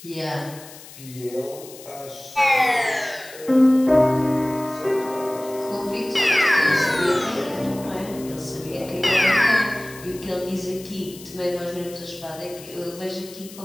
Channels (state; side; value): noise; left; hiss, 18 dB below the sound